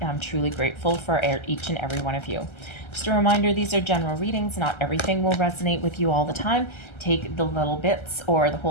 I'm truly grateful for each and every one of you. Just a reminder, these are general readings. Not everything will resonate with you all the time. Take the little bits or the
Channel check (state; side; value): late; right; 1.3 ms